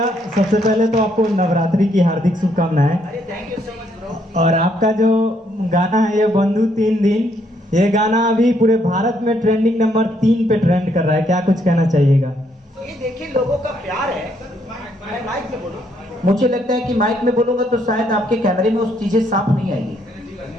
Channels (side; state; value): both; normal; correlation 0.72